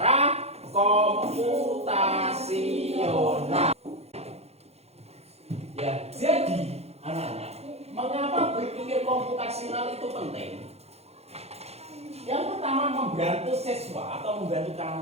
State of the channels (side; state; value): left; late; 0.30 ms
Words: komputasional. Ya, jadi anak-anak, mengapa berpikir komputasional itu penting? Yang pertama, membantu siswa atau membantu